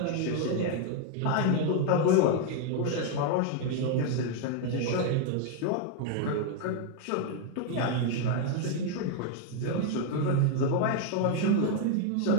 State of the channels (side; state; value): both; different; correlation 0.00